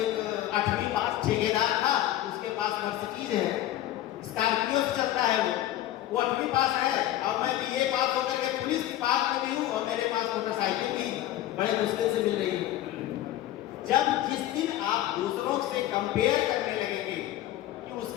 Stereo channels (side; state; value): right; quieter; 13.7 dB